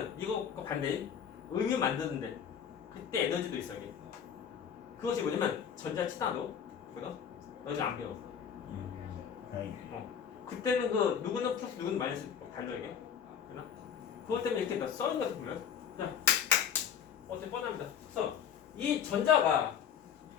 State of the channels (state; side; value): quieter; right; 7.9 dB